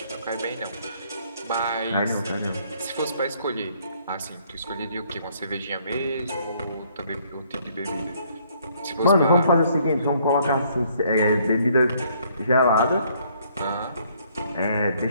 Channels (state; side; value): inverted; both; correlation -0.65